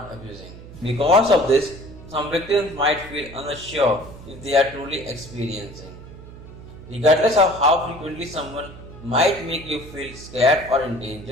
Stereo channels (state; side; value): noise; right; hum, 16 dB below the sound